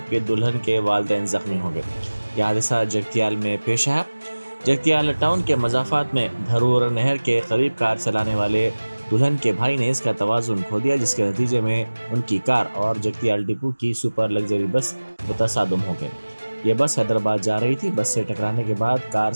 दुल्हन के वालिदैन जख्मी हो गए। यह हादसा जगतियाल में पेश आया। जगतियाल टाउन के मजाफात में धरूर नहर के करीब कार चलाने वाले दुल्हन के भाई ने इसका तवाज़ुन खो दिया, जिसके नतीजे में उनकी कार और जगतियाल डिपो की सुपर लग्जरी बस मुतसादम हो गए। यह बस हैदराबाद जा रही थी। बस से टकराने के बाद कार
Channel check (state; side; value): inverted; both; correlation -1.00